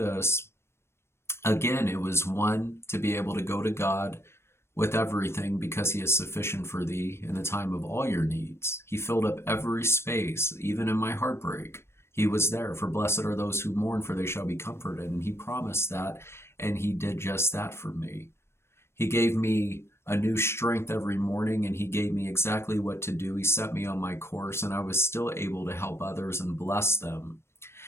again, it was one, to be able to go to God with everything, because he is sufficient for thee in the time of all your needs. He filled up every space, even in my heartbreak. He was there. For blessed are those who mourn, for they shall be comforted. And he promised that, and he did just that for me. He gave me a new strength every morning, and he gave me exactly what to do. He set me on my course, and I was still able to help others and bless them.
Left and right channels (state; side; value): late; right; 0.12 ms